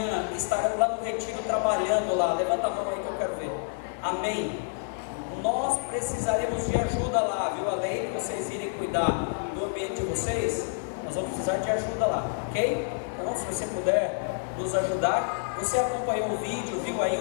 estarão lá no retiro trabalhando lá? Levanta a mão aí que eu quero ver. Amém. Nós precisaremos de ajuda lá, viu? Além de vocês irem cuidar do ambiente de vocês, nós vamos precisar de ajuda lá, ok? Então, se você puder nos ajudar, você acompanhou o vídeo, viu aí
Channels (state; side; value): silent; right; 59 dB below the other